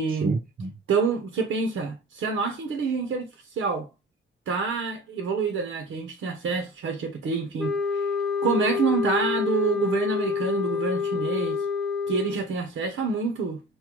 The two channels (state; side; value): normal; both; correlation 0.37